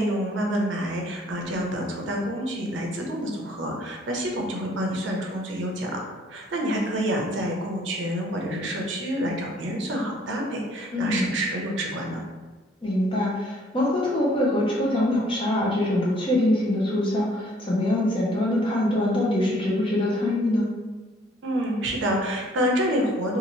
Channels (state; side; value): normal; both; correlation 0.60